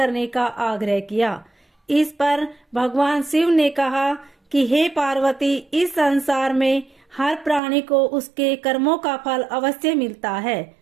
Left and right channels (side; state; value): left; drops out; at 7.6 s